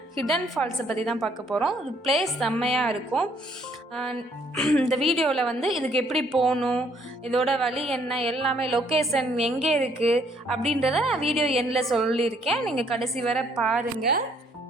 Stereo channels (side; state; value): both; normal; correlation 0.66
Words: ஹிடன் ஃபால்ஸை பற்றி தான் பார்க்க போகிறோம். ஒரு பிளேஸ் செம்மையாக இருக்கும். இந்த வீடியோவில் வந்து இதுக்கு எப்படி போகணும், இதோட வழி என்ன, எல்லாமே லொக்கேஷன் எங்கே இருக்குது அப்படின்றத நான் வீடியோ எண்டில் சொல்லியிருக்கேன். நீங்கள் கடைசி வரை பாருங்கள்.